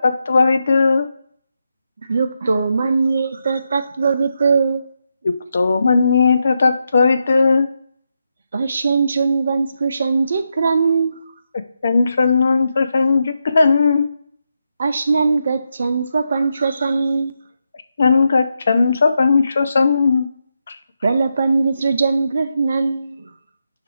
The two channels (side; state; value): both; inverted; correlation -0.84